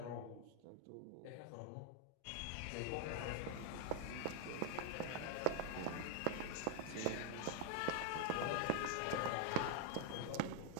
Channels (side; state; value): both; different; correlation 0.00